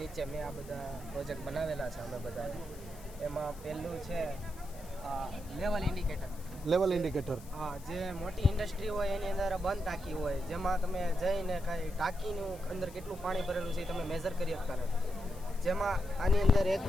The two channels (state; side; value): noise; left; hiss, 20 dB below the sound